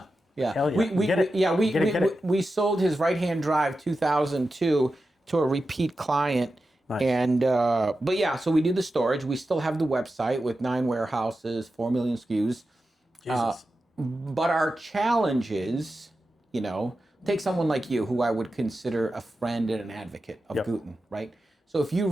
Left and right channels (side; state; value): both; normal; correlation 0.91